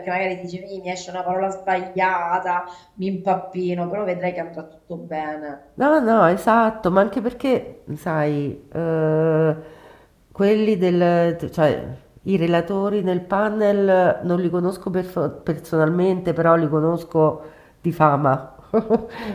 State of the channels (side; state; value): both; identical; correlation 1.00